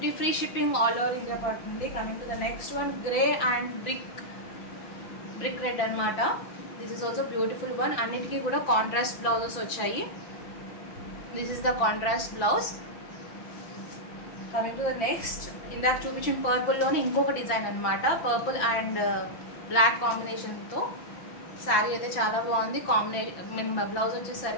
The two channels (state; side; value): late; right; 5.9 ms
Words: free shipping all over India పడుతుంది. Coming to the next one, grey and brick red అనమాట. This is also beautiful one. అన్నిటికీ కూడా కాంట్రాస్ట్ బ్లౌజెస్ వచ్చాయి. This is the contrast blouse. Coming to the next, ఇందాక చూపించిన పర్పుల్లోనే ఇంకొక డిజైన్ అనమాట. పర్పుల్ అండ్ బ్లాక్ కాంబినేషన్తో శారీ అయితే చాలా బాగుంది. బ్లౌజ్